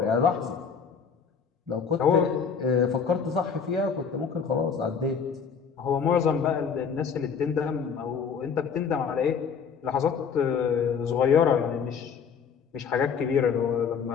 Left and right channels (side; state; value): right; quieter; 6.4 dB